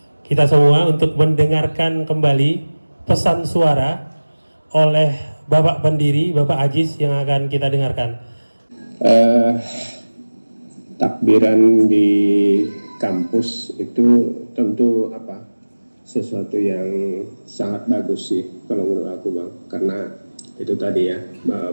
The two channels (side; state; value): both; inverted; correlation -1.00